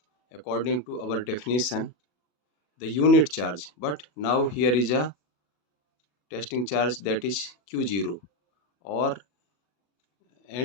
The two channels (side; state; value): right; late; 40 ms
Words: according to our definition, the unit charge, but now here is a testing charge, that is q0, or